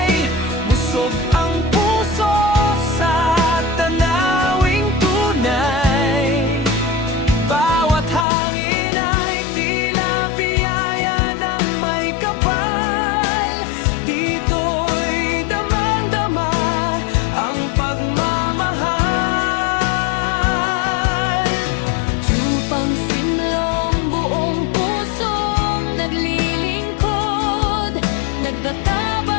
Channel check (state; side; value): drops out; right; at 8.2 s